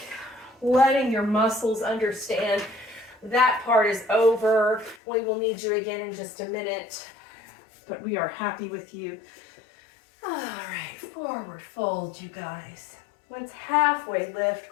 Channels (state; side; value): drops out; right; at 5.0 s